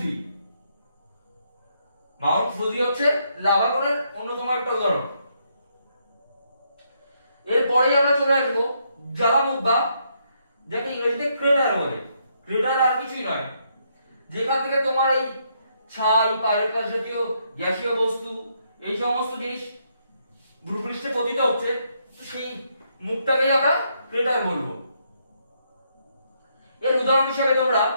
ফুজি হচ্ছে লাভা কোনের অন্যতম একটা উদাহরণ। এরপরেই আমরা চলে আসবো জ্বালামুখ বা যাকে ইংরেজিতে ক্রেটার বলে। ক্রেটার আর কিছুই নয়, যেখান থেকে তোমার এই ছাই, পাইরেট জাতীয় গ্যাসীয় বস্তু এই সমস্ত জিনিস ভূপৃষ্ঠে পতিত হচ্ছে, তো সেই মুখটাকেই আমরা ক্রেটার বলবো। এর উদাহরণ হিসেবে তোমরা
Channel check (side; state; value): both; inverted; correlation -0.75